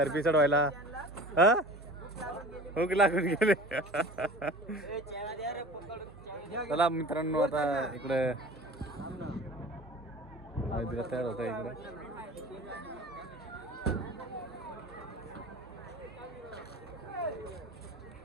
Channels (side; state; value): both; normal; correlation 0.40